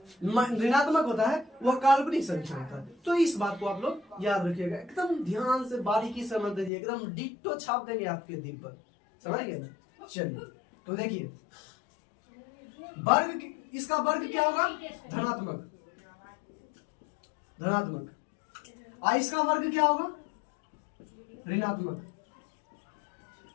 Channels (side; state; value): right; drops out; at 6.7 s